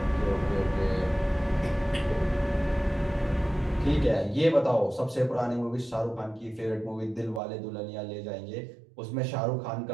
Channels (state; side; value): drops out; left; at 7.4 s